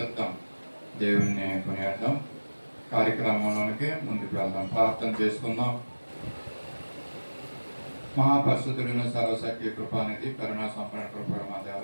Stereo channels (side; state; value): both; inverted; correlation -1.00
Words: దేవుణ్ణి కొనియాడదాం. కార్యక్రమంలోనికి ముందుకు వెళ్దాం, ప్రార్థన చేసుకుందాం. మహాపరిశుద్ధులను సర్వశక్తి కృపానిధి కరుణా సంపన్న కృపణ మా దేవ,